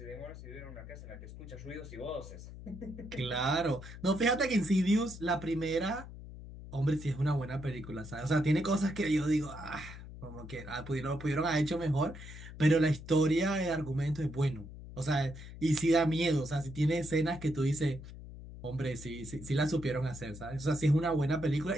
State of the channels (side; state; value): left; noise; hum, 13 dB below the sound